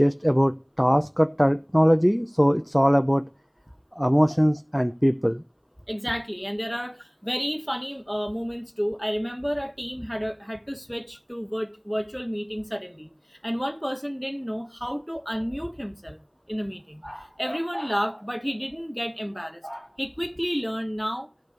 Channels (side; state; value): both; identical; correlation 1.00